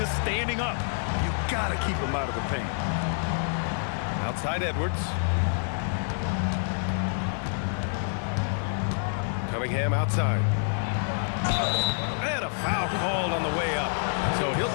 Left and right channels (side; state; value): right; silent; 60 dB below the other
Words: standing up. You got to keep him out of the paint. Outside Edwards. Cunningham outside. And a foul called on the way up. So